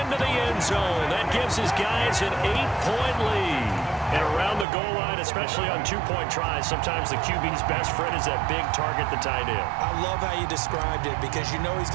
the end zone. That gives his guys an 8-point lead. And around the goal line, especially on 2-point tries, sometimes the QB's best friend is that big target, the tight end. I love how you described it because you know he's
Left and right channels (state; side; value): drops out; left; at 4.7 s